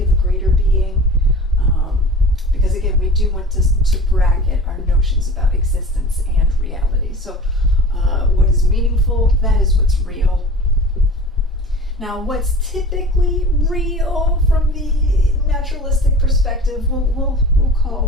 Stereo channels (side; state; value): both; normal; correlation 0.39